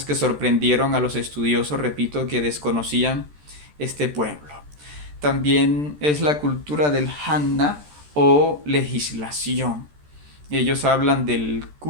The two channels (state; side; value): late; left; 13 ms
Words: que sorprendieron a los estudiosos, repito, que desconocían este pueblo. También es la cultura del Hanna o legislación. Ellos hablan del